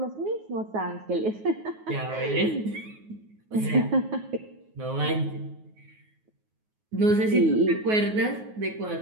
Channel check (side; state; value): left; late; 9.4 ms